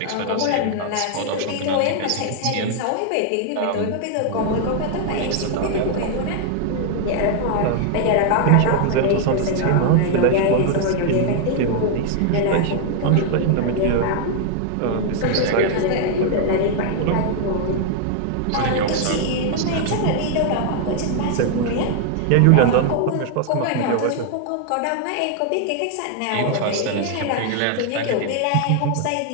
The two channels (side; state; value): both; different; correlation 0.00